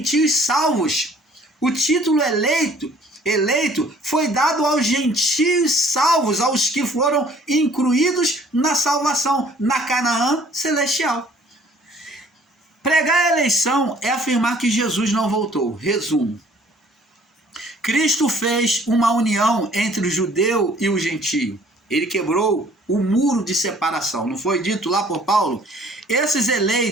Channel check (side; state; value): both; normal; correlation 0.56